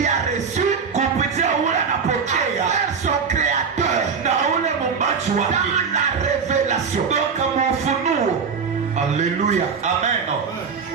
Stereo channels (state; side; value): quieter; left; 5.8 dB